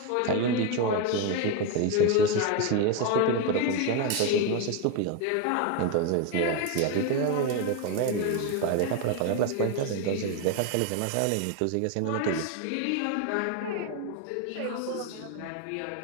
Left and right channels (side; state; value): both; different; correlation 0.02